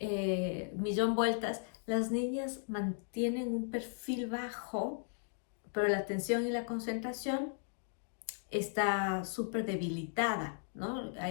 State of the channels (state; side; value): silent; right; digital silence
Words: millón vueltas. Las niñas mantienen un perfil bajo, pero la atención y la concentración está súper debilitada, ¿no?